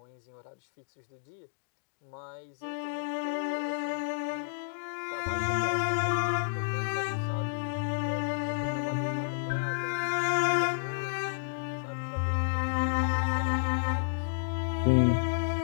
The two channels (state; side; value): silent; right; digital silence